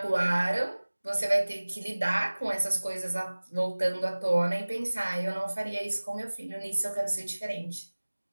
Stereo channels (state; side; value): inverted; both; correlation -1.00